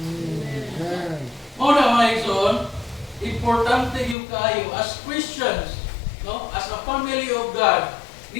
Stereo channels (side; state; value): right; drops out; at 4.2 s